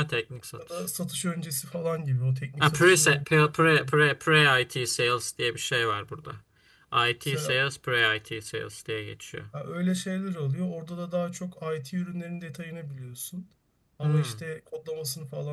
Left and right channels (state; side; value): identical; both; correlation 1.00